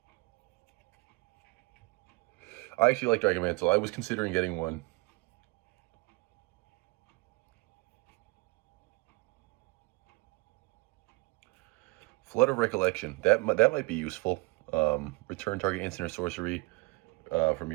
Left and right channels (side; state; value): left; quieter; 26.8 dB